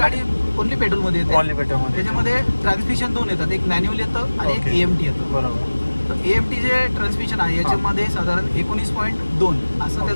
ओनली पेट्रोलमध्ये येते. ओनली पेट्रोलमध्ये. त्याच्यामध्ये ट्रान्समिशन 2 येतात, एक मॅन्युअल येतं आणि एक Okay. AMT येतं. बरोबर. तर AMT जे ट्रान्समिशन आहे याच्यामध्ये साधारण 19.2 असं Okay.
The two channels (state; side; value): inverted; both; correlation -1.00